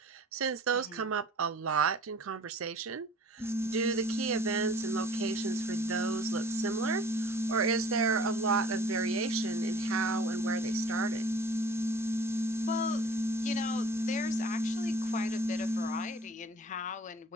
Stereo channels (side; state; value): both; normal; correlation 0.48